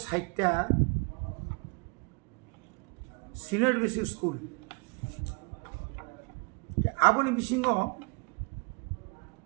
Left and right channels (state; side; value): quieter; left; 31.8 dB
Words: সিনিয়র বেসিক স্কুল আবনি বিসিঙ্গ